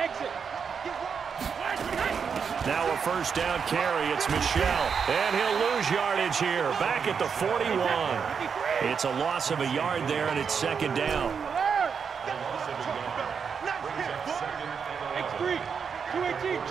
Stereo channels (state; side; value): quieter; left; 6.4 dB